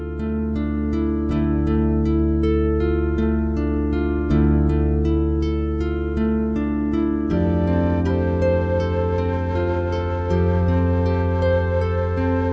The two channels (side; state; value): both; identical; correlation 1.00